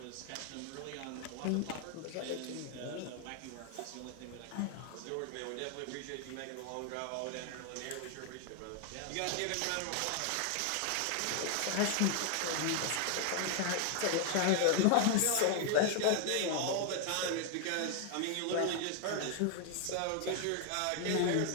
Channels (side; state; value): both; different; correlation 0.00